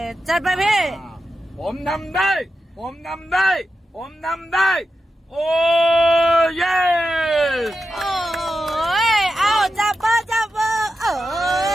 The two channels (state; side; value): normal; both; correlation 0.89